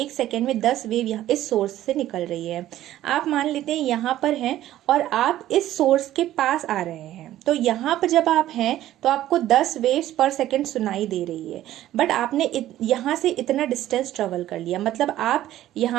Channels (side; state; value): left; quieter; 13.5 dB